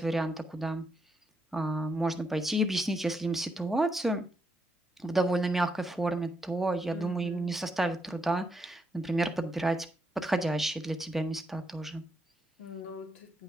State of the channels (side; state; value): both; normal; correlation 0.80